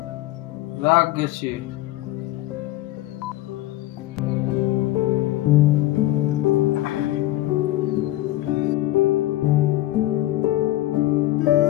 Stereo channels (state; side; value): quieter; right; 15.9 dB